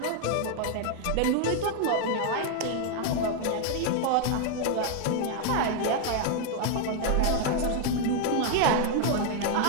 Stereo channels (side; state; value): both; different; correlation 0.00